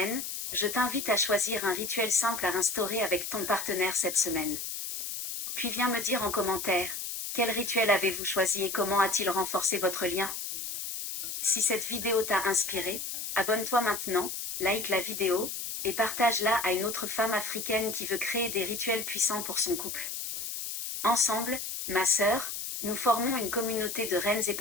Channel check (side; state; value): left; noise; hiss, 5 dB below the sound